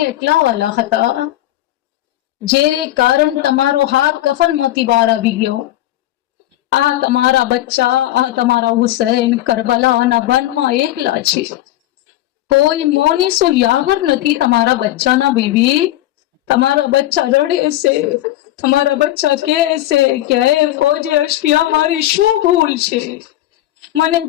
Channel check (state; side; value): quieter; right; 14.6 dB